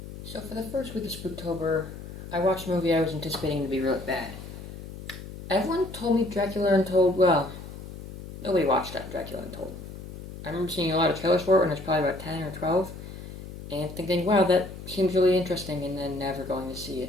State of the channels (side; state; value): left; noise; hum, 12 dB below the sound